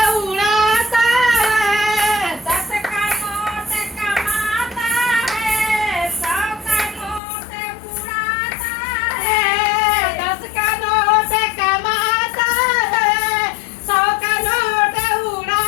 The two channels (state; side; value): drops out; right; at 7.2 s